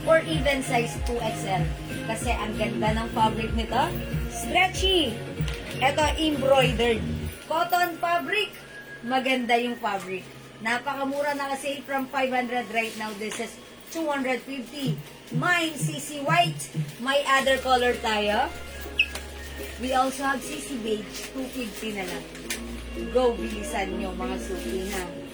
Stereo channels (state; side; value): identical; both; correlation 1.00